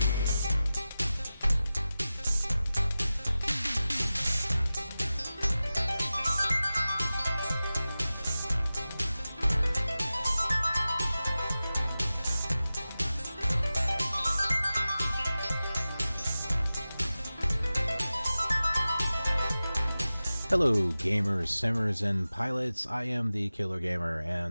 Hello gamers, simmers, and pilots. I am the Killer Gamer,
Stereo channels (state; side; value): inverted; both; correlation -0.95